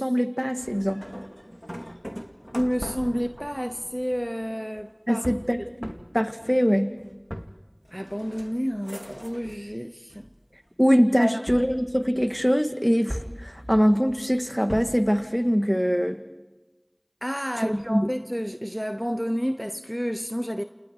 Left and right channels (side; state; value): both; identical; correlation 1.00